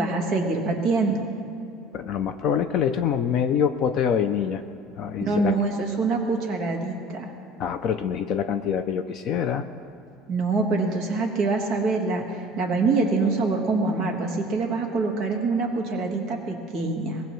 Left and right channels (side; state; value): both; normal; correlation 0.44